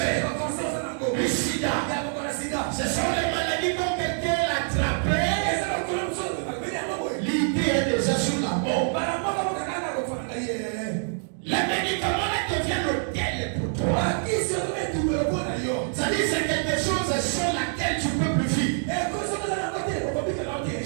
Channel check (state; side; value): silent; left; 61 dB below the other